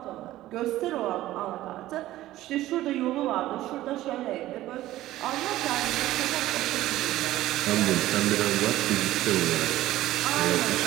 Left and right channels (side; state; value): left; quieter; 15.3 dB